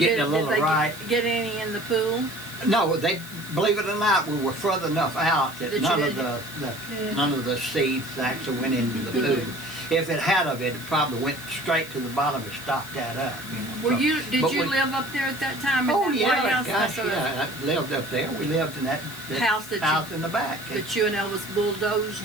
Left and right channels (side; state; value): left; noise; hiss, 16 dB below the sound